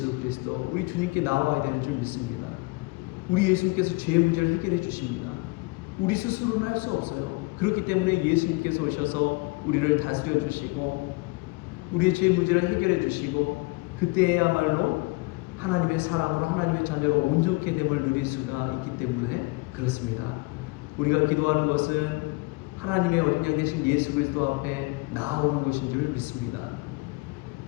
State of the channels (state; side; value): quieter; right; 26.0 dB